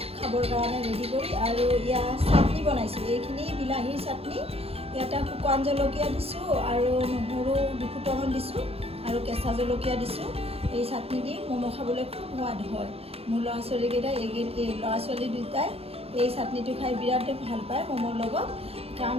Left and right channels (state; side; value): late; left; 0.29 ms